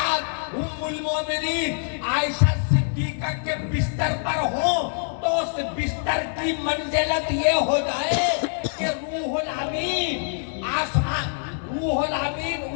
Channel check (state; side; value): silent; right; 62 dB below the other